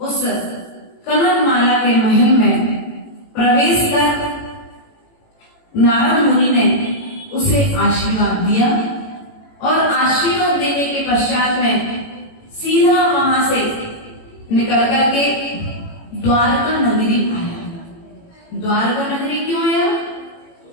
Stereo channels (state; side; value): late; right; 18 ms